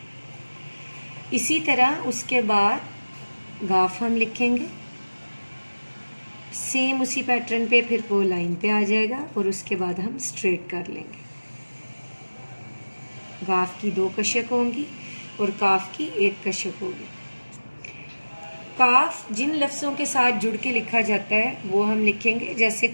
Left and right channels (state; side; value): inverted; both; correlation -1.00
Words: इसी तरह उसके बाद गाफ हम लिखेंगे, सेम उसी पैटर्न पे फिर वो लाइन पे आ जाएगा और उसके बाद हम स्ट्रेट कर लेंगे। गाफ की 2 कशक होंगी और काफ की 1 कशक होगी। काफ जिन लफ्ज़ों के साथ जुड़ के लिखा जाता है वो हम लिखेंगे, जैसे